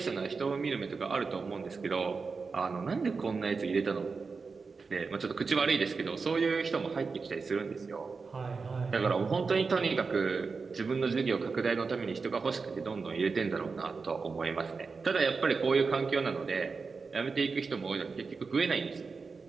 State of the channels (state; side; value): quieter; left; 4.7 dB